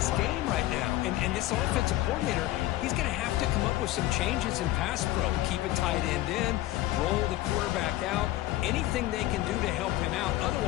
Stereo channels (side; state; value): right; quieter; 15.9 dB